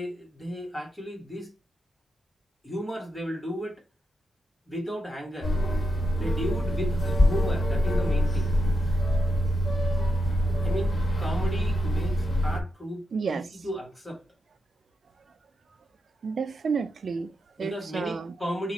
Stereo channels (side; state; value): both; normal; correlation 0.85